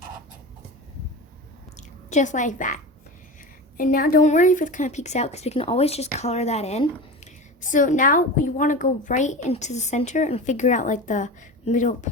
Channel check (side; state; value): both; normal; correlation 0.28